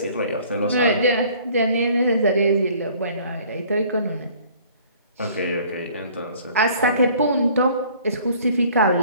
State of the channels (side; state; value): both; inverted; correlation -0.54